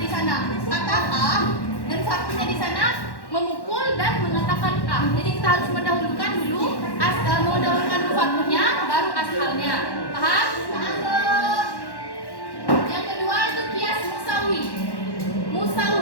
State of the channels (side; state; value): right; late; 1.1 ms